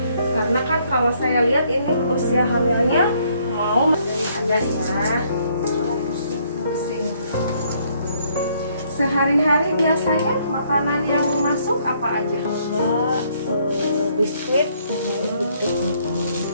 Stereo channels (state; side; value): inverted; both; correlation -0.67